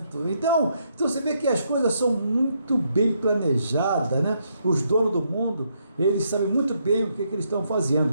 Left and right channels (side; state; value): both; inverted; correlation -0.75